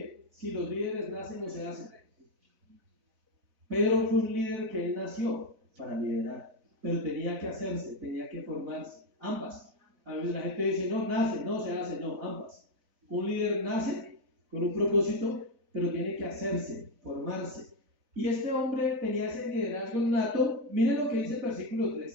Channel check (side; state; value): left; late; 4.0 ms